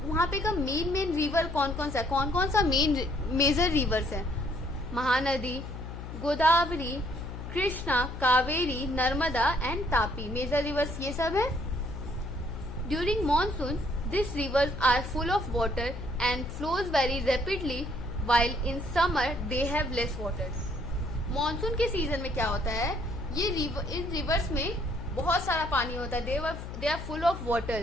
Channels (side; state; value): left; noise; hum, 9 dB below the sound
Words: वहां पे का मेन रिवर कौन कौन सा है? कौन कौन सा मेजर रिवर्स है? Mahanadi, Godavari, Krishna, Kaveri, Narmada and Tapi. Major rivers ये सब है। During monsoon this rivers are full of water and flows very rapidly, while in summer they have less water. Monsoon के सीजन में क्या होता है? इन रिवर्स में बहुत सारा पानी होता है। They are full of